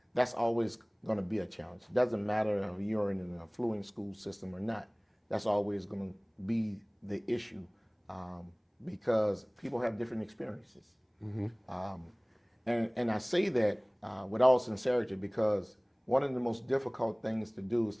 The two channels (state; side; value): identical; both; correlation 1.00